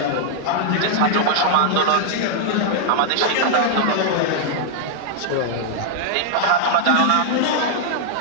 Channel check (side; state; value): both; different; correlation -0.01